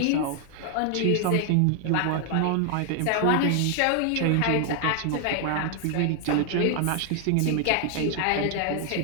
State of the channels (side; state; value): both; different; correlation 0.00